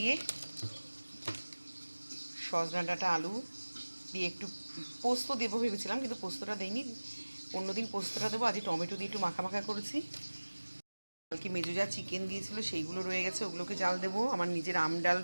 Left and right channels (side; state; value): both; inverted; correlation -1.00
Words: সজনা ডাঁটা আলু দিয়ে একটু পোস্ত দেবো ভেবেছিলাম, কিন্তু পোস্তটা দেইনি, অন্যদিন পোস্তটা দেবো। আজ টমেটো দিয়ে একটু মাখা মাখা করেছি। কালকে মেজো যা চিকেন দিয়েছিল সেইগুলো রয়ে গেছে, ওগুলোকে জাল দেবো। আমার নিজের আম ডাল